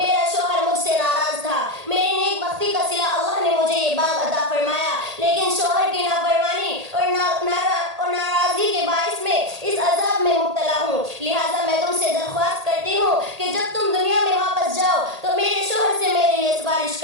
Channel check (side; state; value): left; late; 1.8 ms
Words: شوہر مجھ سے ناراض تھا، میری نیک بختی کا صلہ اللہ نے مجھے یہ باغ عطا فرمایا، لیکن شوہر کی نافرمانی اور ناراضگی کے باعث میں اس عذاب میں مبتلا ہوں۔ لہٰذا میں تم سے درخواست کرتی ہوں کہ جب تم دنیا میں واپس جاؤ تو میرے شوہر سے میرے لیے سفارش